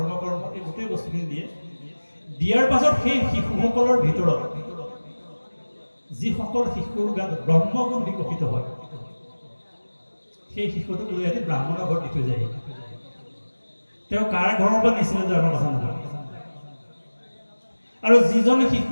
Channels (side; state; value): both; inverted; correlation -1.00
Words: এই গোটেই বস্তুখিনি দিয়ে দিয়াৰ পাছত সেই শিশুসকলৰ ভিতৰত যিসকল শিশুৰ গাত ব্ৰহ্মগুণ বিকশিত হয় সেই শিশুটোক লৈ আহি ব্ৰাহ্মণৰ ঘৰত দি থৈ যায় তেওঁ কাৰ ঘৰৰ পৰা নিছিলে আমাৰ কথা নহয় আৰু যিজন